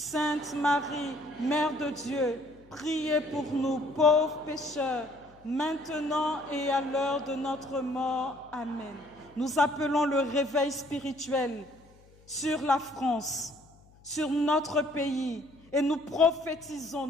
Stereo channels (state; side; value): noise; left; hum, 27 dB below the sound